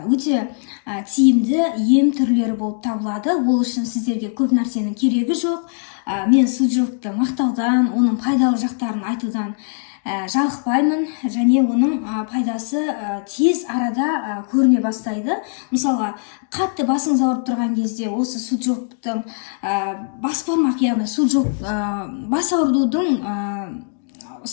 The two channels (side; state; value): right; silent; digital silence